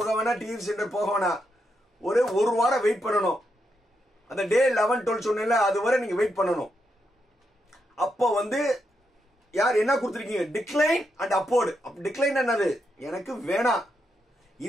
வேணா டிஎஃப்சி சென்டர் போக வேணா ஒரு வாரம் வெயிட் பண்ணணும் அந்த டே 11 12 சொன்னேன்ல அது வரை நீங்க வெயிட் பண்ணணும் அப்போ வந்து யார் என்ன கொடுத்துருக்கீங்க டிக்ளைன் அண்ட் அப்போர்டு டிக்ளைன் என்னது எனக்கு வேணாம்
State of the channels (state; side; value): normal; both; correlation 0.82